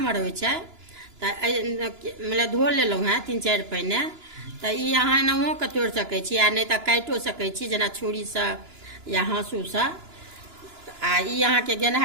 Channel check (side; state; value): left; late; 2.9 ms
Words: होइ छै तो मतलब धो लेलहुँ हैं 3-4 पहिने तो ई अहाँ एनाहो के तोड़ि सकै छी आ नहीं तो काटियो सकै छी जेना छुरी से या हाँसू से। आ ई अहाँ के